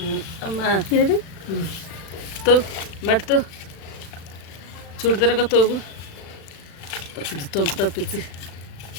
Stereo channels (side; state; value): right; late; 36 ms